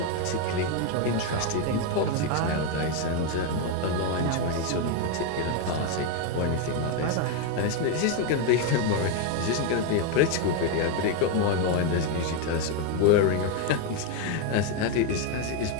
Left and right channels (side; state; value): both; different; correlation 0.02